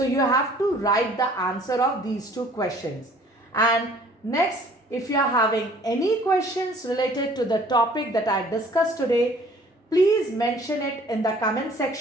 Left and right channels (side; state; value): both; normal; correlation 0.54